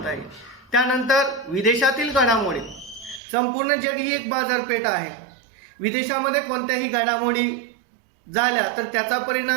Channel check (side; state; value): left; drops out; at 3.2 s